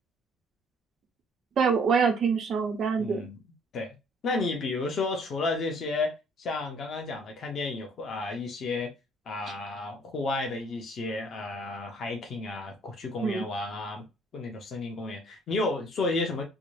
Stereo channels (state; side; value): normal; both; correlation 0.60